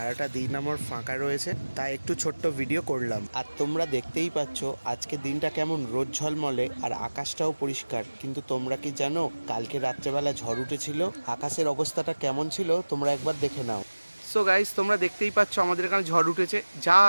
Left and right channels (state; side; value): inverted; both; correlation -1.00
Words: দিন আমার ফাঁকা রয়েছে, তাই একটু ছোট্ট ভিডিও করলাম। আর তোমরা দেখতেই পাচ্ছ আজকে দিনটা কেমন রোদ ঝলমলে, আর আকাশটাও পরিষ্কার। কিন্তু তোমরা কি জানো কালকে রাত্রেবেলা ঝড় উঠেছিল? আকাশের অবস্থাটা কেমন ছিল তোমরা একবার দেখে নাও। সো গাইস, তোমরা দেখতেই পাচ্ছ আমাদের এখানে ঝড় উঠেছে, যা